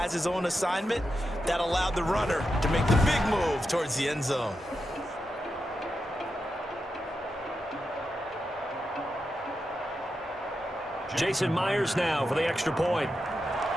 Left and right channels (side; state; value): both; normal; correlation 0.88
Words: his own assignment. That allowed the runner to make the big move towards the end zone. Jason Myers now for the extra point.